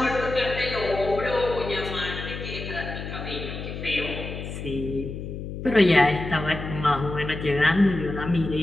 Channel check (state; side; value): noise; left; hum, 8 dB below the sound